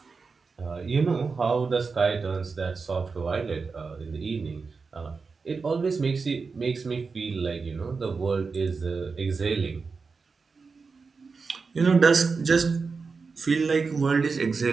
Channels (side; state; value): left; quieter; 4.7 dB